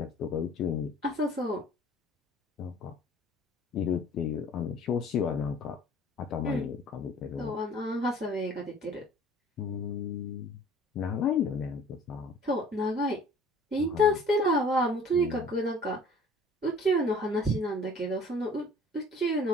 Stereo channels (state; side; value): normal; both; correlation 0.49